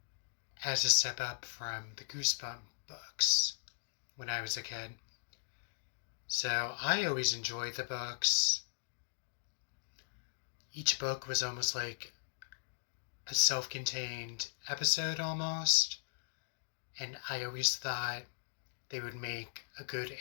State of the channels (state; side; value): silent; right; digital silence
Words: as a step up from the Goosebump books when I was a kid. So I always enjoyed the books. Each book was almost like a self contained episode almost. And I always thought they would make a good